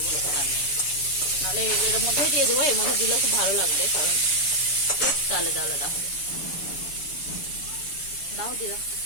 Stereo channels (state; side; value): late; right; 7.0 ms